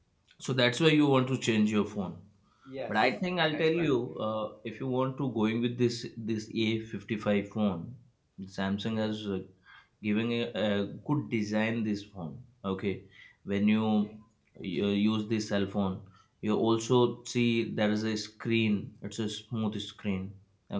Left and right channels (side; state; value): both; identical; correlation 1.00